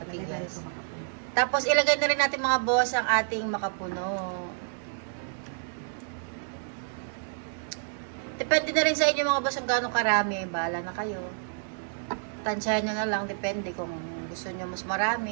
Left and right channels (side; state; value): left; silent; 58 dB below the other